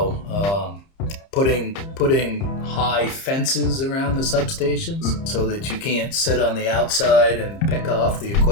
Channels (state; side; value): late; right; 30 ms